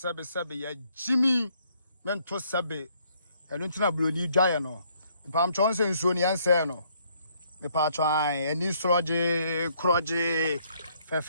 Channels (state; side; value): inverted; both; correlation -0.68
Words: ya Jimmy mento sebe enu ntina broni dwaye no pam chonse nsuo ne yanse no me pa twan eni sroje kroje